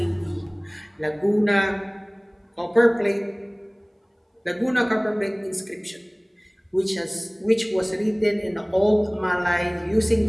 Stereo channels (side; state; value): both; identical; correlation 1.00